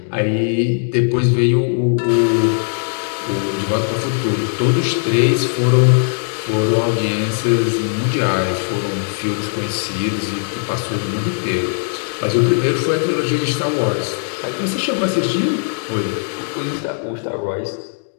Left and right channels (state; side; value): silent; right; digital silence